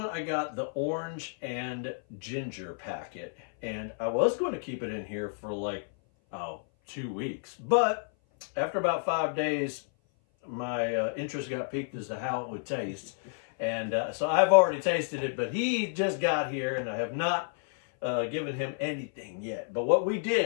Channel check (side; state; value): right; silent; 56 dB below the other